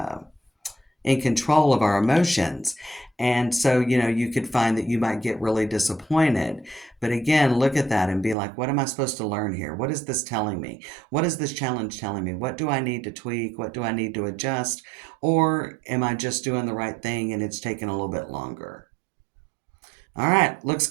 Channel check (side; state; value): left; drops out; at 8.3 s